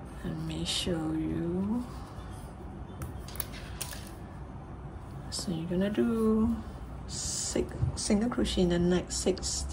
Let me show you. So you're gonna do 6 single crochet in the next 6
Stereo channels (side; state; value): both; identical; correlation 1.00